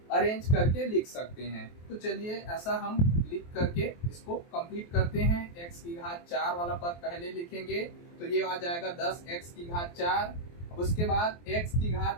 अरेंज करके लिख सकते हैं। तो चलिए ऐसा हम लिख करके इसको कंप्लीट करते हैं। x की घात 4 वाला पद पहले लिखेंगे तो ये आ जाएगा 10x की घात 4। अब उसके बाद x की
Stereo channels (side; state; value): right; late; 23 ms